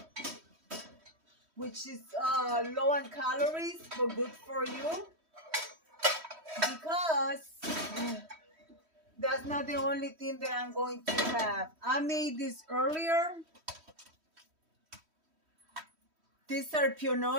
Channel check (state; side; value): late; left; 3.1 ms